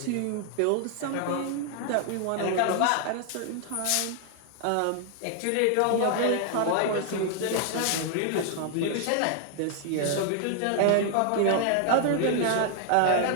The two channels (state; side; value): different; both; correlation 0.00